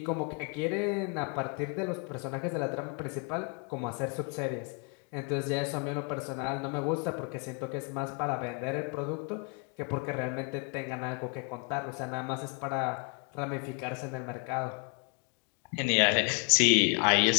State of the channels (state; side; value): quieter; right; 32.6 dB